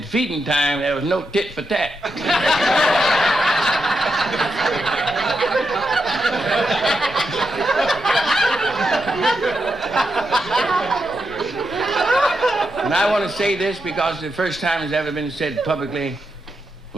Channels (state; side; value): normal; both; correlation 0.85